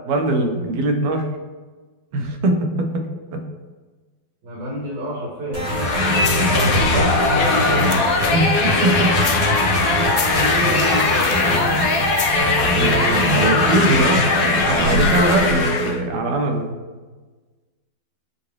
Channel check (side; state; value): left; late; 12 ms